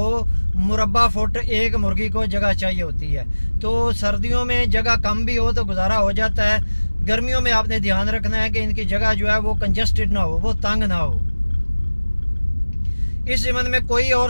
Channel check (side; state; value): both; inverted; correlation -1.00